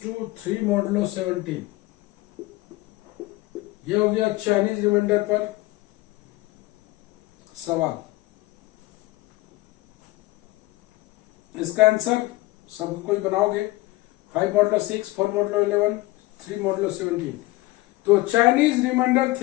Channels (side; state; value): right; quieter; 19.5 dB